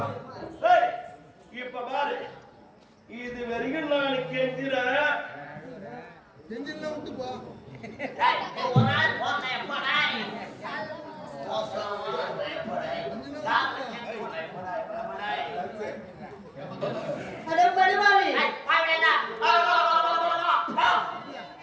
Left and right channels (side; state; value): both; identical; correlation 1.00